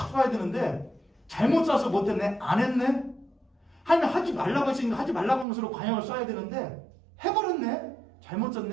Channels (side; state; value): left; drops out; at 5.5 s